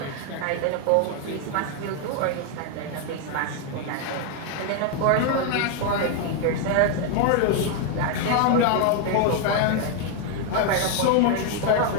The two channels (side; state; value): both; different; correlation 0.00